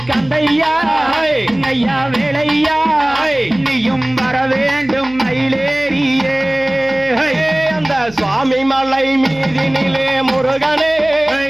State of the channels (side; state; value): right; noise; hum, 22 dB below the sound